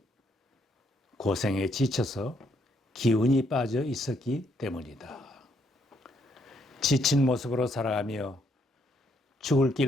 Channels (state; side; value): normal; both; correlation 0.73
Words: 고생에 지쳐서 기운이 빠져 있었기 때문이다. 지친 모습으로 살아가며 죽을